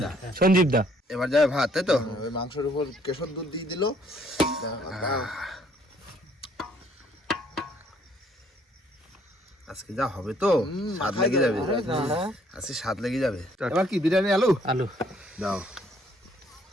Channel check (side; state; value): both; normal; correlation 0.64